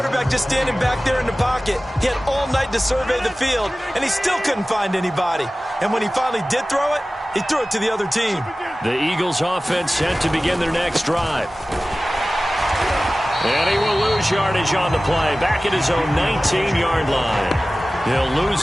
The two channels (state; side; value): normal; both; correlation 0.97